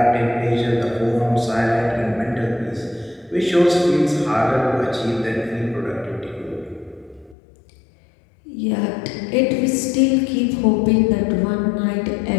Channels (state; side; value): drops out; right; at 7.4 s